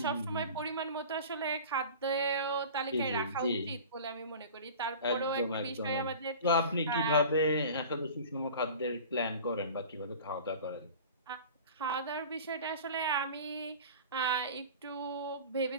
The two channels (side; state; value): both; inverted; correlation -0.39